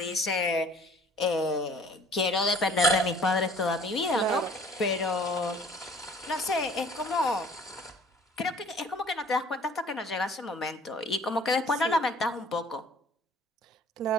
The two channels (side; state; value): both; normal; correlation 0.52